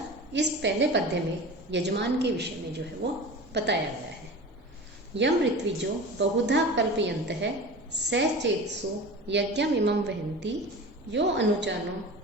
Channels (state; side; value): normal; both; correlation 0.34